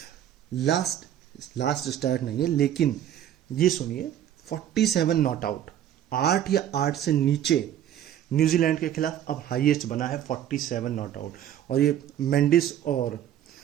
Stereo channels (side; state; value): left; quieter; 10.9 dB